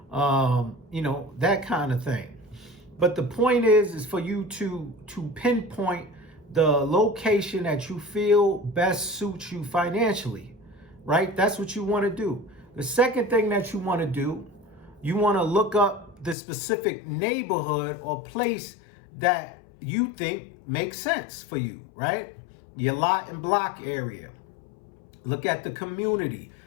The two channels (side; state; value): right; drops out; at 16.4 s